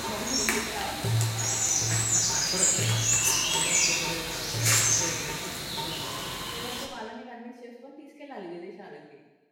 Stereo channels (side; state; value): both; identical; correlation 1.00